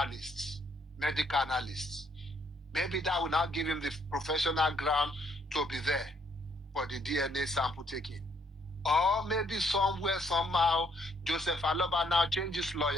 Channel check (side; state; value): both; normal; correlation 0.69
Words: medical analysts. Maybe that will now give him the professional ground to be there for the DNA sample taking. Or maybe somewhere, somehow, Joseph Aloba now changes